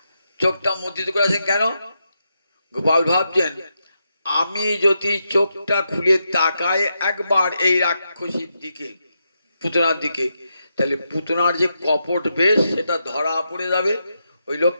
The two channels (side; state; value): both; inverted; correlation -0.85